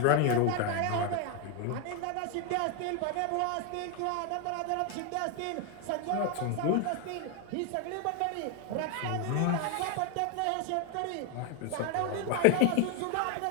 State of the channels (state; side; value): different; both; correlation 0.01